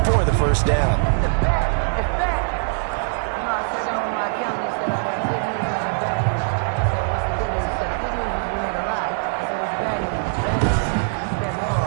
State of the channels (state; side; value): silent; left; digital silence